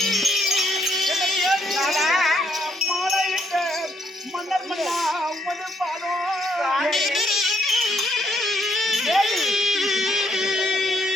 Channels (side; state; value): both; normal; correlation 0.72